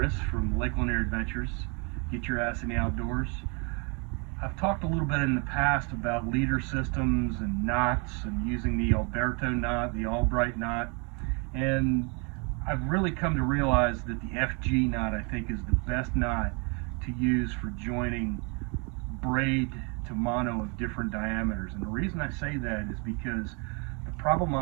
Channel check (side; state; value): left; quieter; 33.6 dB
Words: from Lake Lanier Adventures. Get your ass in the outdoors. I've talked a little bit in the past about leader systems and knots and using the Alberto knot, the Albright knot, and I've really come to realize that the FG knot, I think, is the best knot to use for joining braid to mono of different diameters. And the reason I say that is because the problem